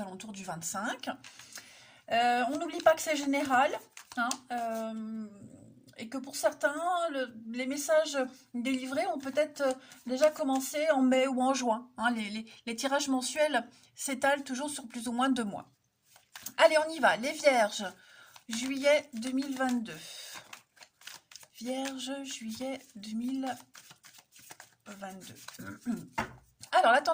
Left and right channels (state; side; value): identical; both; correlation 1.00